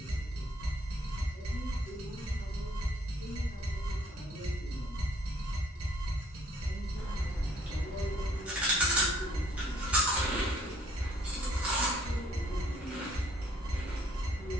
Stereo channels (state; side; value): normal; both; correlation 0.60